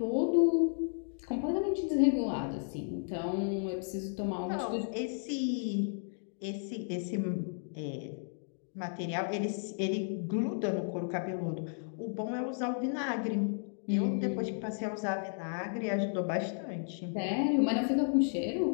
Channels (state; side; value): silent; right; digital silence